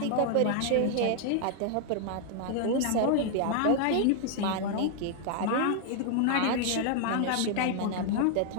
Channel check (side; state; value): both; different; correlation 0.00